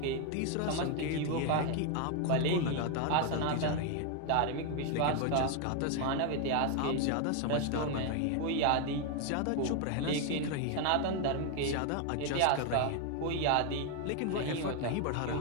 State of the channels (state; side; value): different; both; correlation 0.01